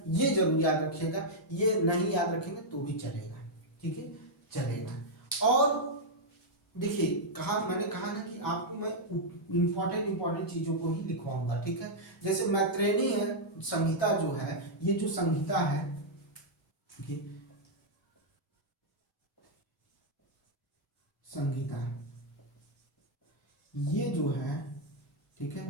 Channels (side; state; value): both; normal; correlation -0.05